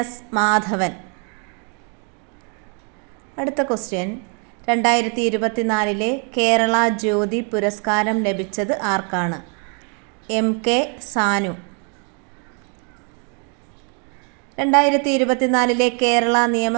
Madhavan. അടുത്ത ക്വസ്റ്റ്യൻ, 2024 കേരള ജ്യോതി പുരസ്കാരം ലഭിച്ചത് ആർക്കാണ്? MK സാനു. 2024 കേരള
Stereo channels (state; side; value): quieter; left; 38.8 dB